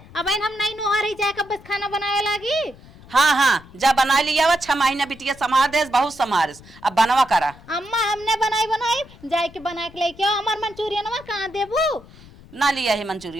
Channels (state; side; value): noise; left; rumble, 22 dB below the sound